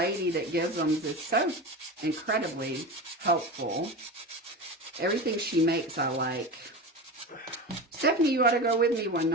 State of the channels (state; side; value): normal; both; correlation 0.26